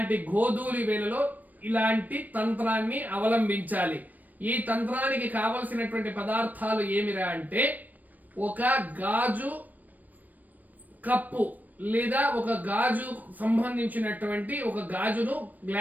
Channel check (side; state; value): left; late; 0.083 ms